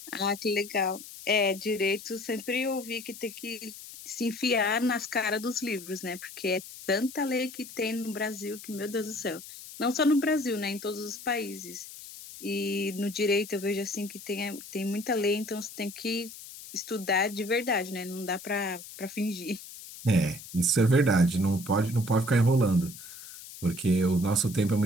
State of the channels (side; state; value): left; noise; hiss, 14 dB below the sound